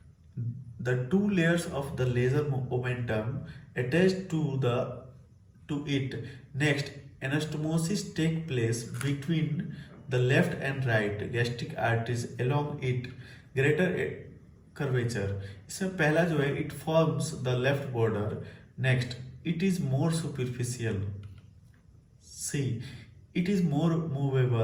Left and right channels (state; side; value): identical; both; correlation 1.00